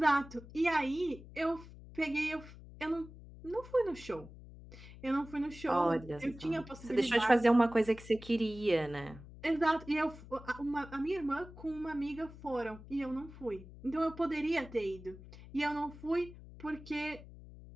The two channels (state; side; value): noise; left; hum, 17 dB below the sound